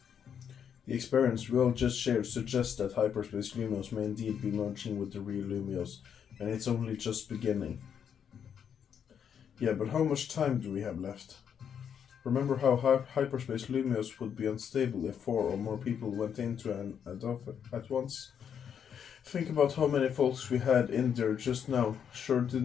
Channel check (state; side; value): quieter; right; 8.0 dB